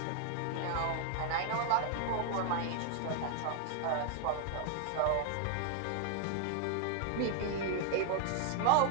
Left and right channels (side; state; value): both; different; correlation 0.00